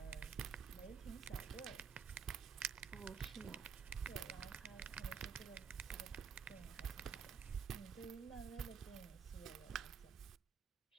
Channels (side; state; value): left; quieter; 6.5 dB